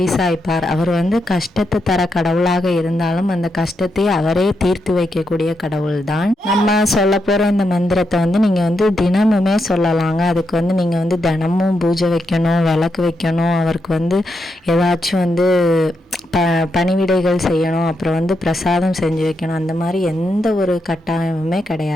அவர் கஷ்டத்தை தர கடவுளாக இருந்தாலும் அந்த கஷ்டத்தை அவரே தீர்த்து வைக்கக்கூடிய கடவுள் தான். நம்ம சொல்ல போகிற இந்த மந்திரத்தை நீங்கள் தினமுமே சொல்லலாங்க. அதுக்கு நீங்கள் தினமும் பூஜை வைக்கணும், விளக்கு வைக்கணும், அவருக்கு ஏதாச்சும் பணிவிடைகள் செய்யணும், அப்புறம் பிரசாதம் செஞ்சு வைக்கணும். அந்த மாதிரி எந்த ஒரு கட்டாயமுமே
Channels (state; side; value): normal; both; correlation 0.83